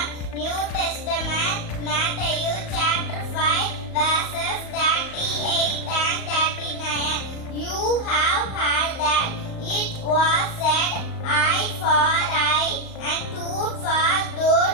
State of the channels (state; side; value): late; right; 38 ms